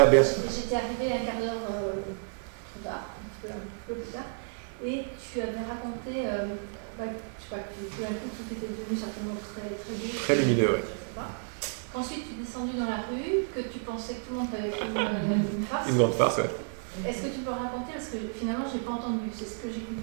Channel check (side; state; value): left; silent; digital silence